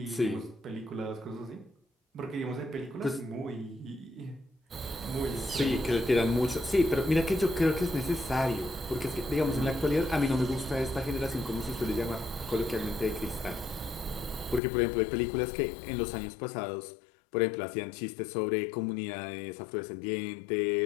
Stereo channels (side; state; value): right; drops out; at 14.6 s